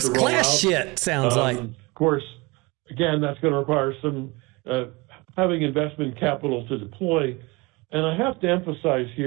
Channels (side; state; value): left; quieter; 25.2 dB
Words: class shit, sounds like. Of course, again, that's going to require some having investment capital to deploy. And I have to emphasize